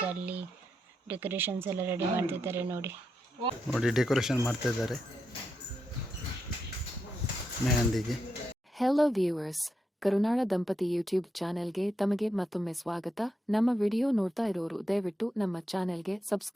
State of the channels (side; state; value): both; normal; correlation 0.84